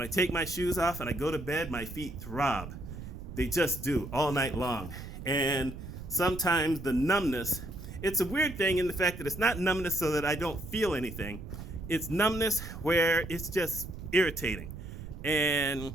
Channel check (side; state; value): right; noise; rumble, 11 dB below the sound